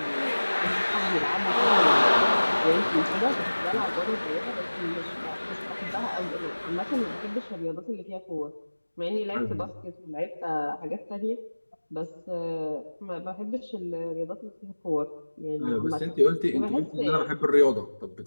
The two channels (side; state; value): both; inverted; correlation -1.00